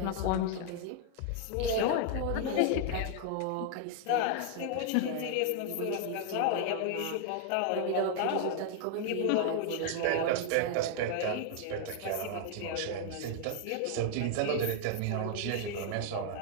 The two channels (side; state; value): both; different; correlation 0.00